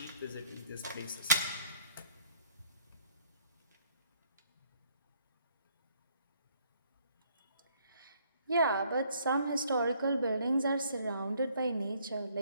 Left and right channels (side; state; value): both; inverted; correlation -0.64